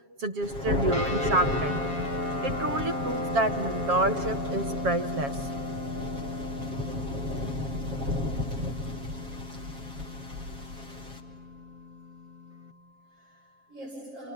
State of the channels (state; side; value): late; left; 7.3 ms